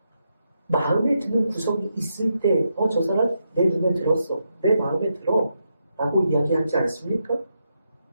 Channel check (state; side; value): inverted; both; correlation -0.83